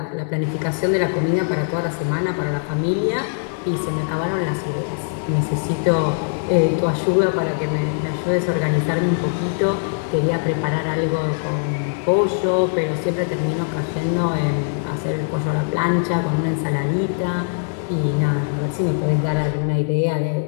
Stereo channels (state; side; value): silent; right; digital silence